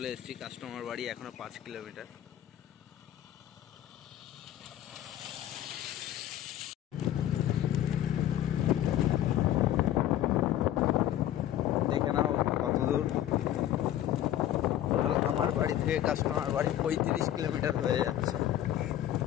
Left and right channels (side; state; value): right; quieter; 12.2 dB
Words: এসেছি। কাস্টমার বাড়ি এখনো 5 কিলোমিটার। দেখে নাও কত দূর। আমার বাড়ি থেকে কাস্টমার বাড়ি 35 কিলোমিটার হয়ে যাচ্ছে।